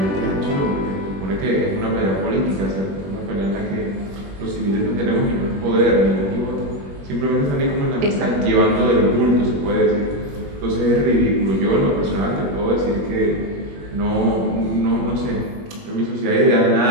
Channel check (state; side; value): late; left; 21 ms